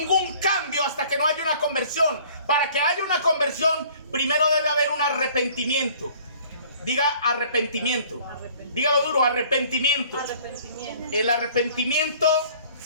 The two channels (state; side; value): inverted; both; correlation -0.53